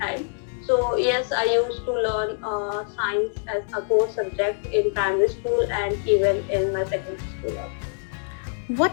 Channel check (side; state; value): right; silent; 62 dB below the other